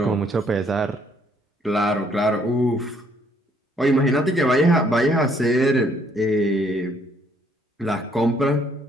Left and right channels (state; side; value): normal; both; correlation 0.66